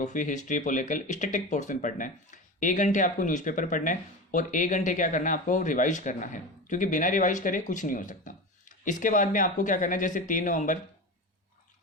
history, political, static portion पढ़ना है। 1 घंटे आपको न्यूज़पेपर पढ़ना है और 1 घंटे क्या करना है, आपको रिवाइज करना है, क्योंकि बिना रिवाइज करे कुछ नहीं हो सकता। इसके बाद में आपको क्या करना है, जैसे 3 नवंबर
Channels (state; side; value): normal; both; correlation 0.26